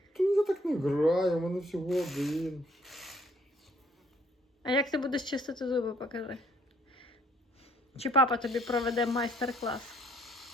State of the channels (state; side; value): normal; both; correlation 0.64